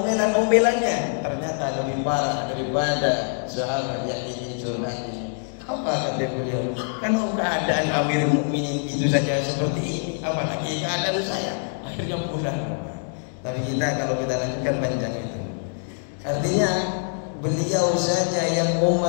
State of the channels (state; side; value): silent; right; 62 dB below the other